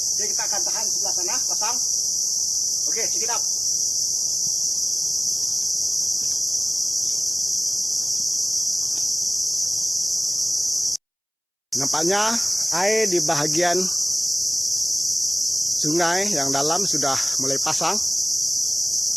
Jadi kita akan tahan sebelah sana, pasang. Oke, check it out. Nampaknya air di bahagian sungai yang dalam sudah mulai pasang,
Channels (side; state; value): both; identical; correlation 1.00